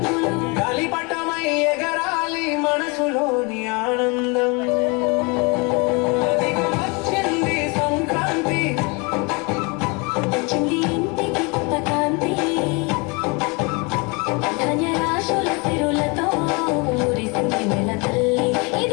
గాలిపటమై ఎగరాలి మనసులోని ఆనందం అదిగో వచ్చింది సంక్రాంతి వచ్చింది ఇంటికి కొత్త కాంతి ధాన్యరాశుల సిరులతో మురిసింది నెల తల్లి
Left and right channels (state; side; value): quieter; right; 29.5 dB